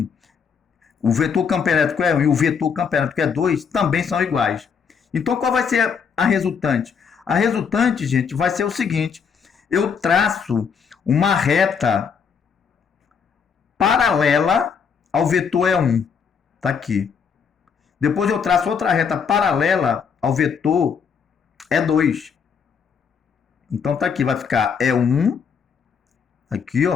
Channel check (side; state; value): right; quieter; 6.5 dB